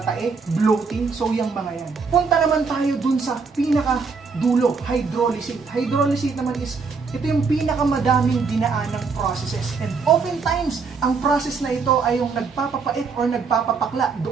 bloating, so yung mga yan. Punta naman tayo dun sa pinaka-dulo, hydrolysate. Hydrolysate naman is ito yung pinakamadaming dinaanang processes. And oftentimes, ang process na ito ay yung nagpapapait or nagpapapakla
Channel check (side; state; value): left; quieter; 4.9 dB